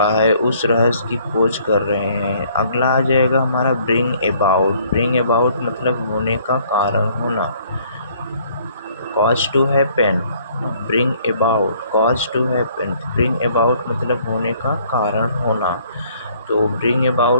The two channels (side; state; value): both; inverted; correlation -0.61